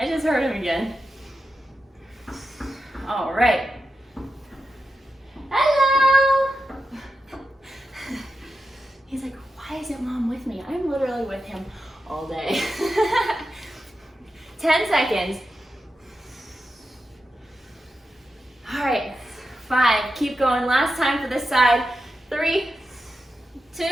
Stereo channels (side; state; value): both; normal; correlation 0.89